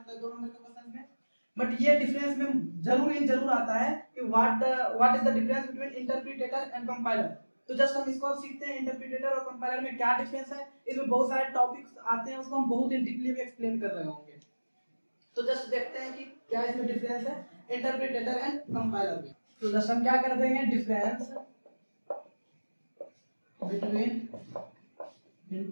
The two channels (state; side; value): inverted; both; correlation -1.00